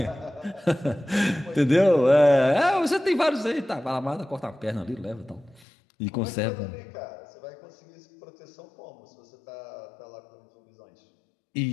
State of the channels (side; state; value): right; drops out; at 5.7 s